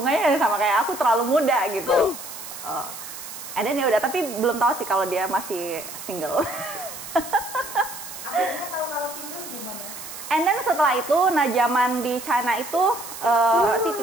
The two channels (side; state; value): right; noise; hiss, 11 dB below the sound